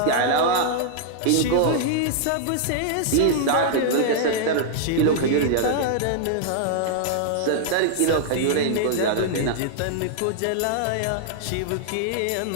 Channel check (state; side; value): different; both; correlation -0.01